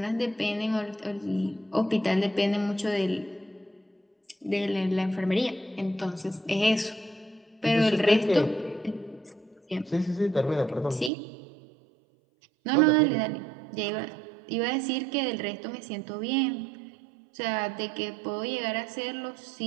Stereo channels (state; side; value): drops out; left; at 11.1 s